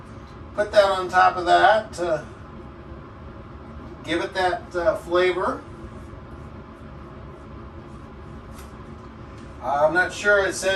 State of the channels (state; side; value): identical; both; correlation 1.00